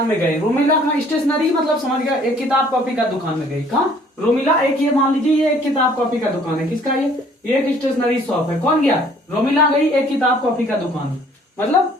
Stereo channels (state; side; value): normal; both; correlation 0.58